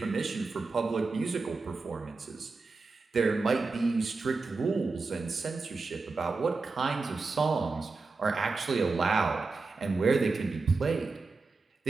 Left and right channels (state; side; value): quieter; left; 4.0 dB